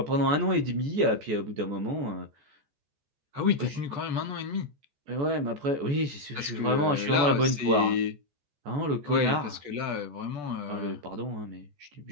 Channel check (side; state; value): left; late; 14 ms